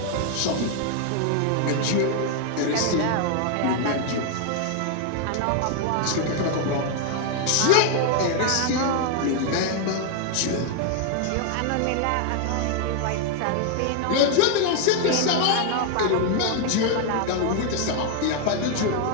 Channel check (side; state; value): both; different; correlation 0.01